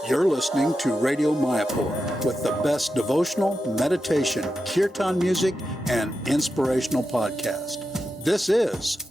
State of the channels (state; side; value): normal; both; correlation 0.89